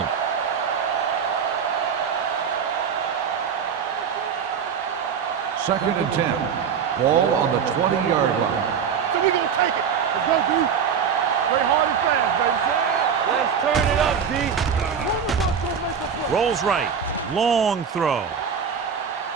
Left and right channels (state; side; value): quieter; left; 7.0 dB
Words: 2nd and 10. Ball on the 20-yard line. So we're going to take it. Let's go, D. Play hard and fast, baby. Let's turn it up, D. One of us will make a play. Rolls right. Long throw.